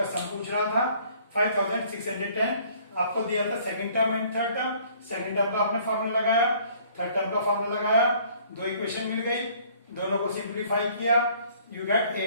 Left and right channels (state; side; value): inverted; both; correlation -0.58